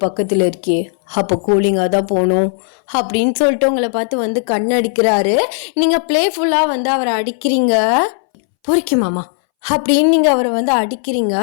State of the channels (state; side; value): silent; right; 65 dB below the other